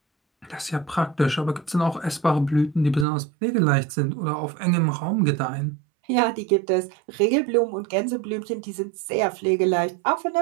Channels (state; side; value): drops out; left; at 3.1 s